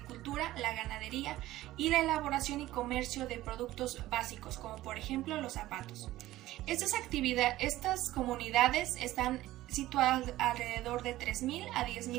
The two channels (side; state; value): left; quieter; 15.9 dB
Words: la ganadería y la elaboración y comercio de productos básicos, como por ejemplo los zapatos. Estas comunidades están situadas alrededor de 3.000 a